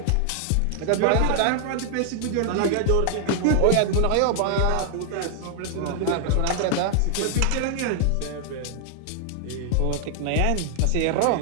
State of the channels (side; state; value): both; different; correlation 0.00